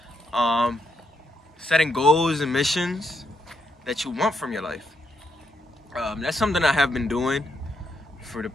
um, setting goals and missions that you want from your life. That's something I have been doing for the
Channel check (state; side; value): normal; both; correlation 0.79